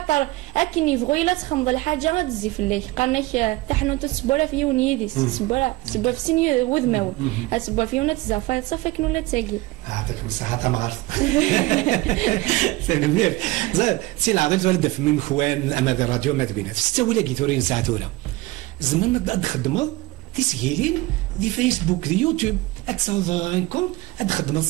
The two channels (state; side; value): quieter; left; 20.3 dB